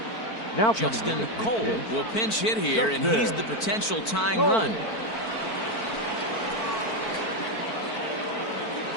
Now Justin Cole will pinch hit here, and he's the potential tying run.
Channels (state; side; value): late; right; 4.5 ms